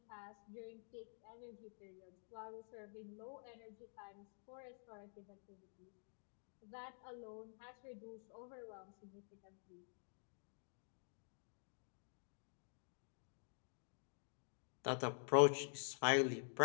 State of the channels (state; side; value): silent; right; digital silence